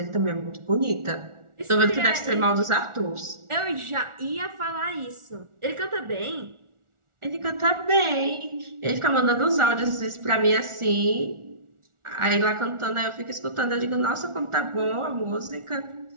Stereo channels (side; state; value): left; late; 1.4 ms